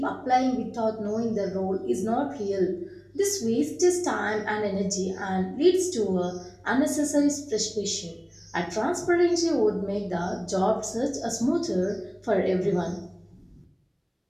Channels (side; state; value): both; identical; correlation 1.00